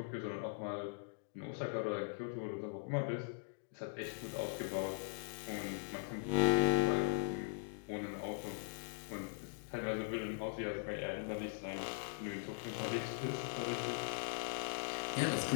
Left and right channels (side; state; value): right; silent; digital silence